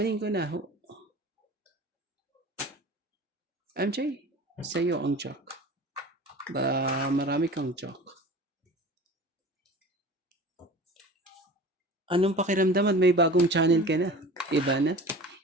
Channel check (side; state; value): both; normal; correlation 0.38